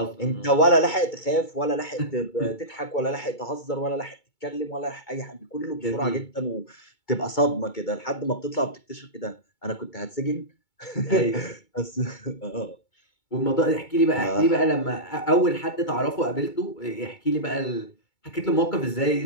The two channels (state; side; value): late; right; 2.2 ms